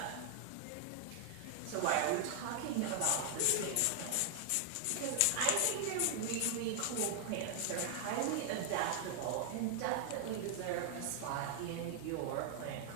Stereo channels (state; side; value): different; both; correlation 0.00